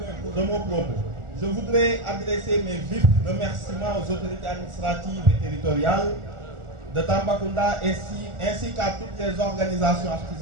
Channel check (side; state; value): left; late; 1.4 ms